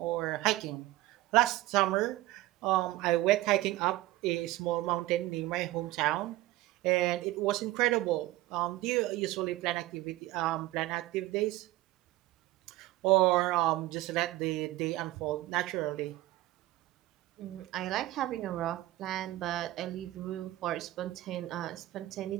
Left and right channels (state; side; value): quieter; left; 17.0 dB